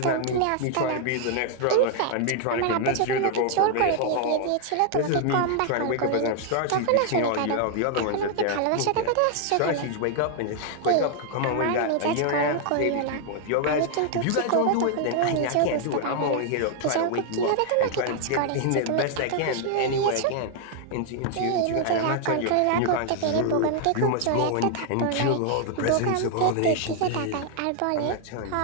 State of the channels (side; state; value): both; different; correlation 0.00